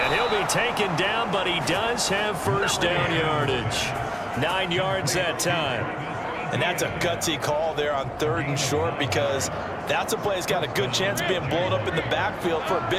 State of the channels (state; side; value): identical; both; correlation 1.00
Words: he'll be taken down, but he does have first down yardage. 9 yards that time. And that's a gutsy call there on 3rd and short because that's a play that's got a good chance of being blown up in the backfield for a